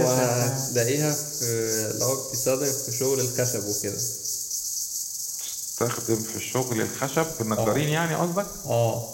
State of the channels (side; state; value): both; identical; correlation 1.00